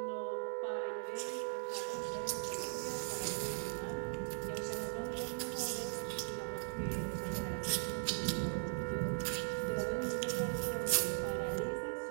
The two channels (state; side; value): silent; left; 52 dB below the other